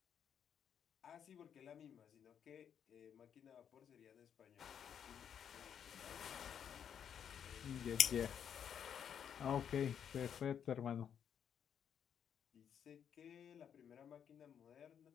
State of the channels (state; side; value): quieter; right; 8.4 dB